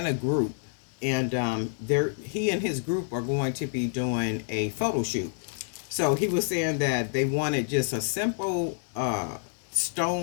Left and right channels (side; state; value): right; silent; digital silence